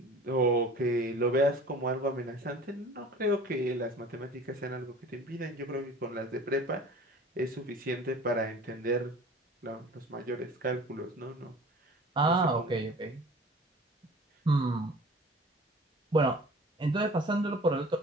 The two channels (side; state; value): both; normal; correlation 0.44